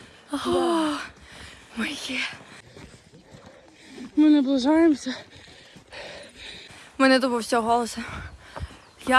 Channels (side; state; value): both; identical; correlation 1.00